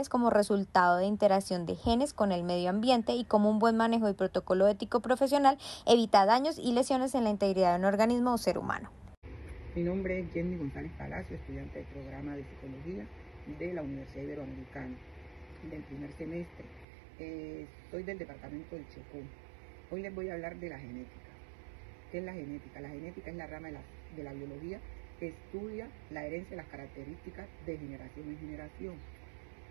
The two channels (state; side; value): drops out; left; at 16.9 s